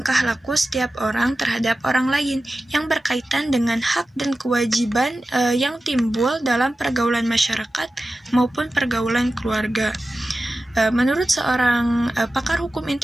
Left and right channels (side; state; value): both; normal; correlation 0.94